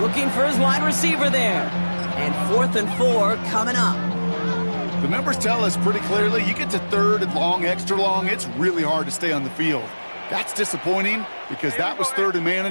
Looking for his wide receiver there. And 4th and 4 coming up. The numbers tell us pretty clearly, you get to 3rd and long, extra long, it's really hard to stay on the field. That's disappointing because that was 3rd and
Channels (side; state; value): both; inverted; correlation -1.00